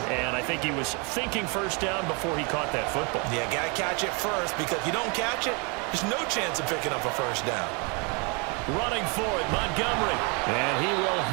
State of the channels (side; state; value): left; quieter; 32.6 dB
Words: and I think he was thinking first down before he caught that football. Yeah, got to catch it first, because if you don't catch it, there's no chance of picking up a first down. Running for it, Montgomery. And he will